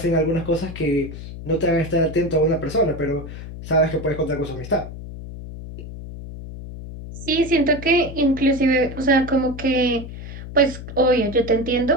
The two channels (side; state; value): left; noise; hum, 11 dB below the sound